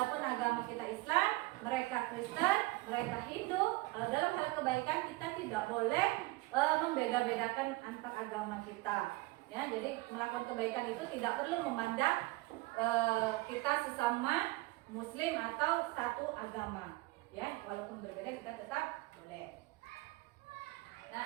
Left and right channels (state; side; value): quieter; left; 21.6 dB